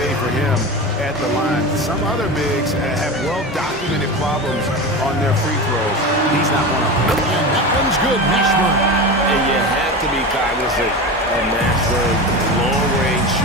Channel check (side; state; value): both; normal; correlation 0.25